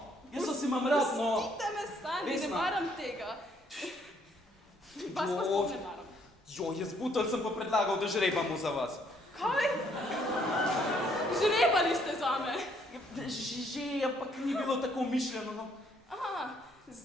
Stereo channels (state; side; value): normal; both; correlation 0.67